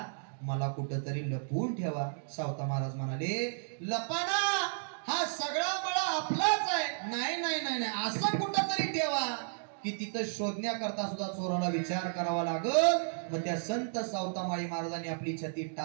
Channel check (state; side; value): silent; left; digital silence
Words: मला कुठंतरी लपवून ठेवा. सावता महाराज म्हणाले, लपाना, हा सगळा मळा आपलाच आहे. नाही नाही नाही नाही, असं कुठंतरी ठेवा की तिथं शोधण्याकरता सुद्धा चोराला विचार करावा लागल. मग त्या संत सावतामाळी महाराजांनी आपली छाती